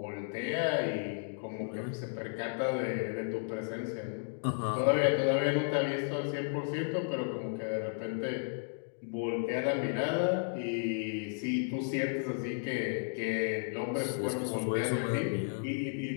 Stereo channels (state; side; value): silent; right; digital silence